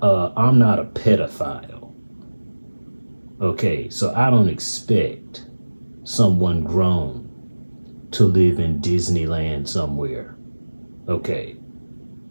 I'm not a pedophile. Okay, so I don't expect someone grown to live in Disneyland somewhere. Okay,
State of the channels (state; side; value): inverted; both; correlation -1.00